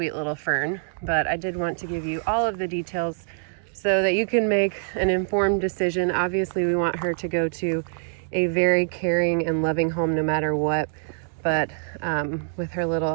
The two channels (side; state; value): left; silent; digital silence